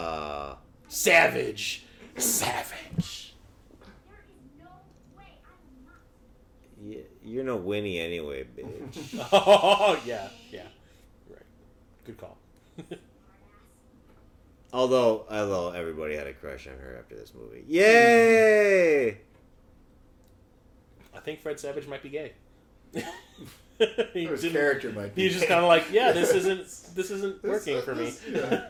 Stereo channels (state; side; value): identical; both; correlation 1.00